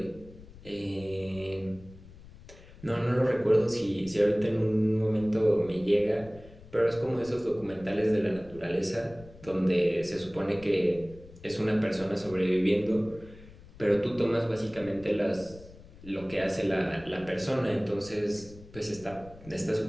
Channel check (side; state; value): left; noise; rumble, 20 dB below the sound